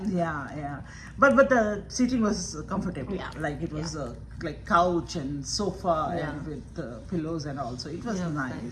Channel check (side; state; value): both; identical; correlation 1.00